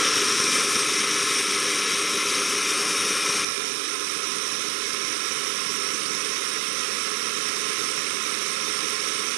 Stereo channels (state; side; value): drops out; left; at 3.5 s